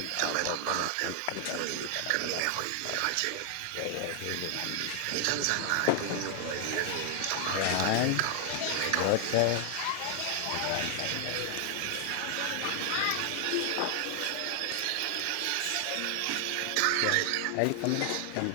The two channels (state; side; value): different; both; correlation 0.00